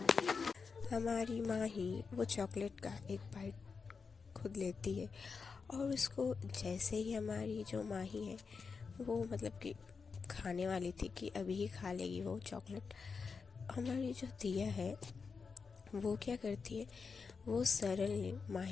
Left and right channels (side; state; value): right; quieter; 5.1 dB